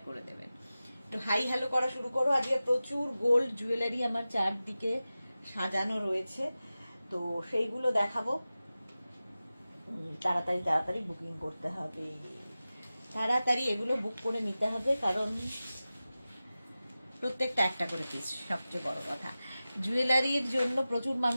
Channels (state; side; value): inverted; both; correlation -0.95